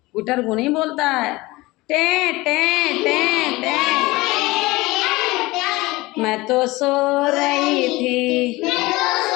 गुटर गू नहीं बोलता है, टे टे टे टे। मैं तो सो रही थी,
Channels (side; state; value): right; quieter; 20.9 dB